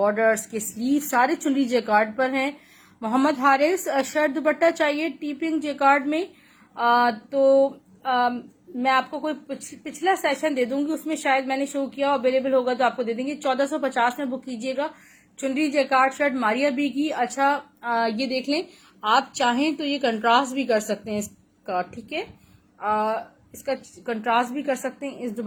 के स्लीव सारे चुनरी जेकार्ड पर हैं। मोहम्मद हारिस शर्ट दुपट्टा चाहिए टी पिंक जेकार्ड में, मैं आपको कोई पिछला सेशन दे दूंगी, उसमें शायद मैंने शो किया, अवेलेबल होगा तो आपको दे देंगे। 1450 में बुक कीजिएगा चुनरी जेकार्ड शर्ट मारिया बी की। अच्छा, ये देख लें, आप चाहें तो ये कंट्रास्ट भी कर सकते हैं इसका, ठीक है। इसका कंट्रास्ट भी कर सकते हैं, इस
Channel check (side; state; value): both; identical; correlation 1.00